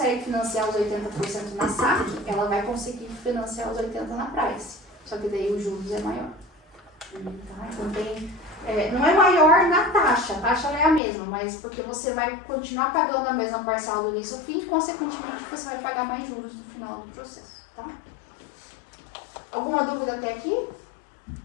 financiar os 80% na SAC, ela vai conseguir financiar os 80% na Price. Só que daí os juros é maior. Tá? Então, não é maior na taxa, a taxa é a mesma, mas porque você vai continuar pagando a mesma parcela do início ao fim, e consequentemente você vai pagar mais juros no final do processo, tá? Alguma dúvida até aqui?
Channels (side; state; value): right; drops out; at 11.0 s